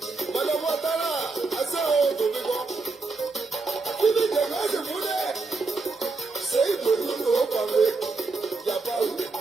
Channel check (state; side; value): quieter; left; 3.9 dB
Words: Madame Ouattara, à ça, on te dit bon. Qui dit que moi je voulais, c'est une bonne chose au pavé. Il n'y a pas où,